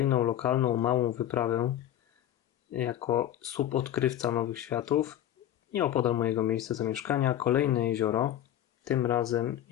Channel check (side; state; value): right; quieter; 11.7 dB